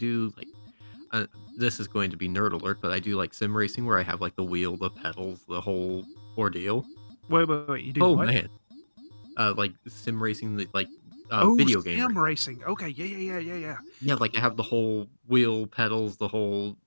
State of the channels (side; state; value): both; inverted; correlation -1.00